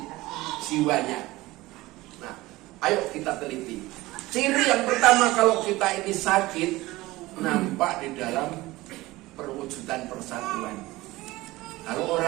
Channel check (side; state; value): left; quieter; 19.2 dB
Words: jiwanya. Nah, ayo kita teliti. Ciri yang pertama kalau kita ini sakit, nampak di dalam perwujudan persatuan. Kalau